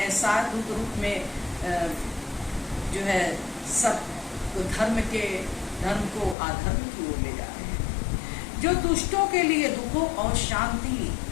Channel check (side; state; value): right; drops out; at 6.4 s